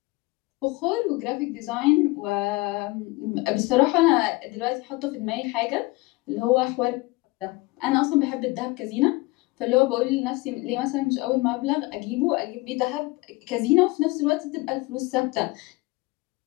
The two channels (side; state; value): right; quieter; 22.8 dB